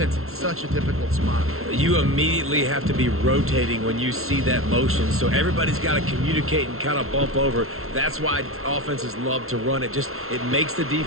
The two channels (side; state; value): left; late; 0.62 ms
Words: in such a difficult spot. You immediately have to be rotating when you see that motion, so everybody's got to communicate and kind of bump over. That's why offenses love to run it. It makes the